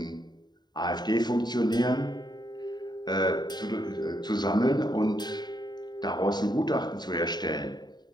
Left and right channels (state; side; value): late; right; 0.20 ms